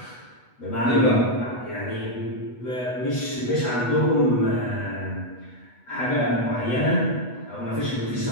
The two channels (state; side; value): late; right; 8.2 ms